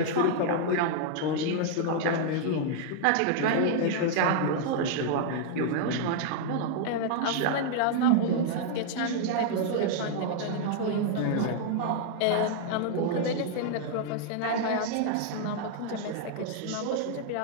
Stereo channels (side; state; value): both; different; correlation 0.00